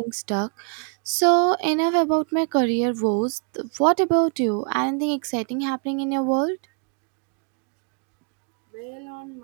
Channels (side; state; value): left; quieter; 39.1 dB